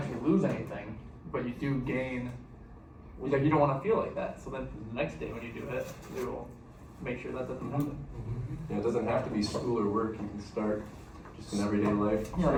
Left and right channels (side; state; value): both; identical; correlation 1.00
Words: lose anything, but you do gain. Like you don't want to feel like that. So then the next day when you do it, you will make sure that doesn't happen. Yeah, it doesn't have to be school or work. You can start just in everyday life. Yeah,